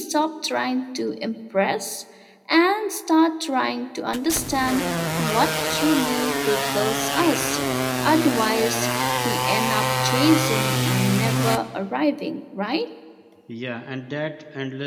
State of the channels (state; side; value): identical; both; correlation 1.00